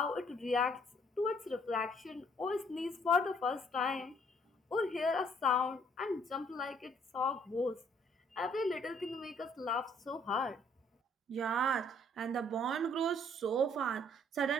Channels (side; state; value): both; normal; correlation 0.63